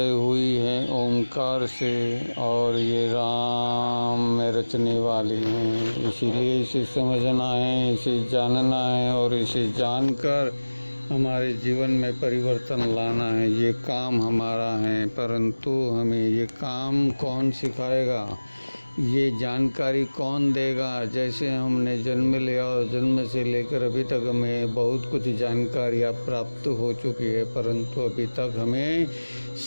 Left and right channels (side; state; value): both; inverted; correlation -1.00